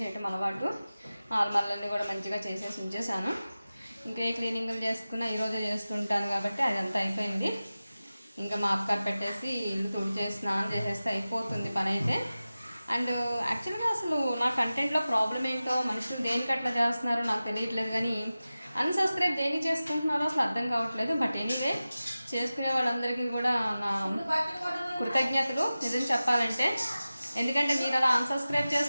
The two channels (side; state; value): both; inverted; correlation -0.96